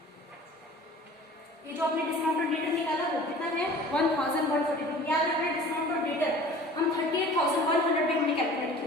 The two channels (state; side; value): normal; both; correlation 0.44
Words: ये जो आपने डिस्काउंट ऑन डेटर निकाला वो कितना है 1142। याद रखना डिस्काउंट ऑन डेटर हम 38,100 में हमने कैलकुलेट किया,